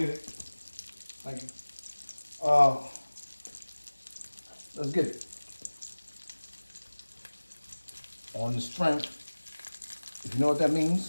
it. Thank you. Let's get it. On the strength. If you know what that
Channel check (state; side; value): inverted; both; correlation -1.00